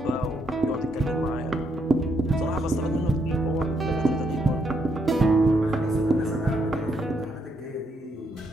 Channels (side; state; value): both; normal; correlation 0.76